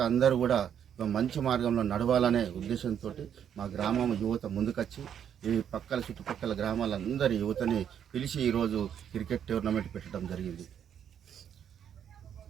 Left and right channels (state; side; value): quieter; left; 8.9 dB